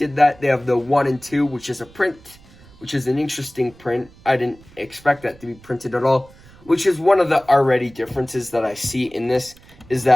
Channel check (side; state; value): right; noise; rumble, 25 dB below the sound